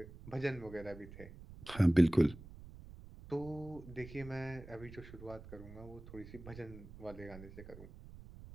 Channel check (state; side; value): noise; right; rumble, 16 dB below the sound